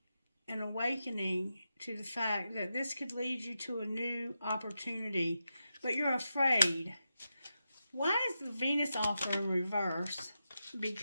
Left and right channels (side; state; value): both; inverted; correlation -0.89